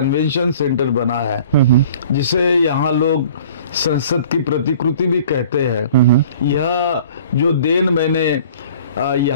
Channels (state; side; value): inverted; both; correlation -0.49